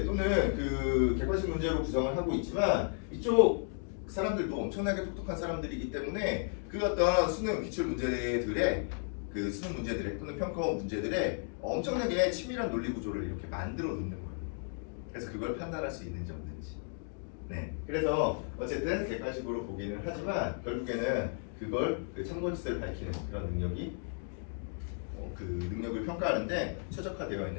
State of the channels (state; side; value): silent; right; 55 dB below the other